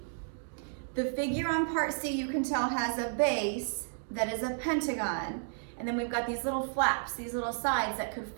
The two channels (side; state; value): left; silent; digital silence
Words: the figure on part C you can tell has a base that is a pentagon, and then we've got these little flaps, these little sides that could